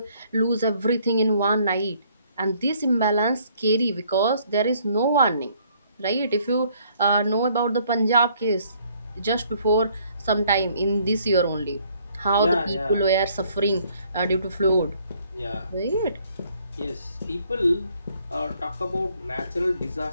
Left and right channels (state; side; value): inverted; both; correlation -0.64